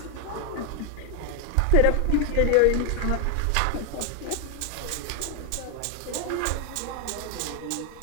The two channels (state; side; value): different; both; correlation 0.00